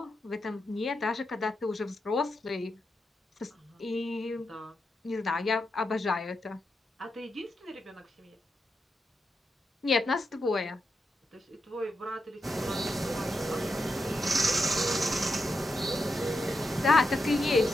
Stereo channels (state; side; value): normal; both; correlation 0.86